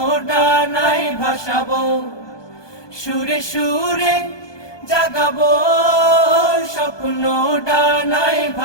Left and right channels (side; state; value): right; late; 1.2 ms